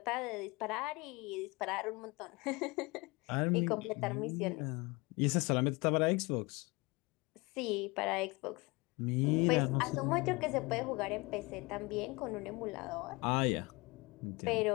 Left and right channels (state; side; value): quieter; right; 25.3 dB